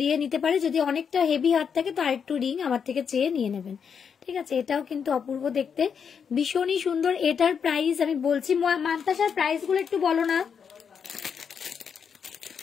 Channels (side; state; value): right; quieter; 6.9 dB